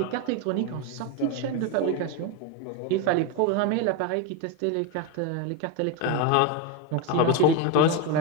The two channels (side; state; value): both; different; correlation 0.03